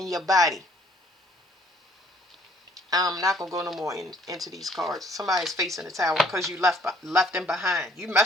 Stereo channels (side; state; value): both; normal; correlation 0.61